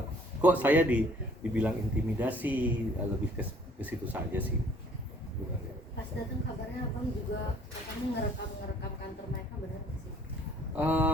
kok saya dibilang intimidasi, lebih ke situ saja sih. Pas datang kabarnya abang juga kamu ngerekam kantor mereka, benar nggak sih?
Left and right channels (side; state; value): both; normal; correlation 0.58